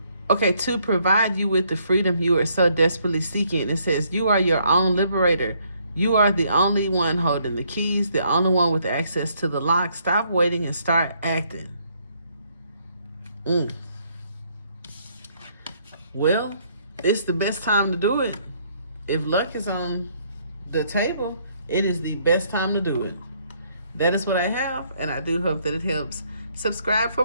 Okay, to provide you with the freedom you are so desperately seeking. It says, you are your own liberator. You are the only one holding the keys, the only one with access to the lock. Stop waiting and start acting. Well, it's the best time to do it. If luck is on the table, it is the best time to do it. That is what I have, and I do hope that it helps. Subscribe for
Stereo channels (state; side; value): inverted; both; correlation -0.68